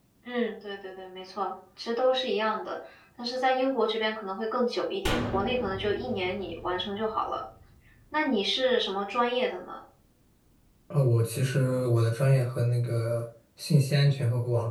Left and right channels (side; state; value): both; identical; correlation 1.00